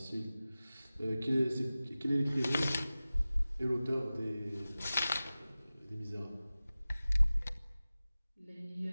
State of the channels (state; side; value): inverted; both; correlation -0.97